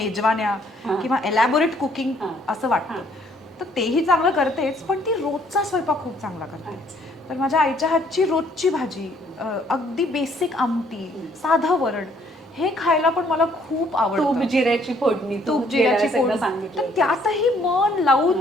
किंवा एलॅबोरेट कुकिंग असं वाटतं. तर तेही चांगलं करतेच, पण ती रोजचा स्वयंपाक खूप चांगला करते. तर माझ्या आईच्या हातची रोजची भाजी, अगदी बेसिक आमटी, साधं वरण, हे खायला पण मला खूप आवडतं. तूप जिऱ्याची फोडणी, तूप जिऱ्याची फोडणी, तर त्यातही मन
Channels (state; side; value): normal; both; correlation 0.64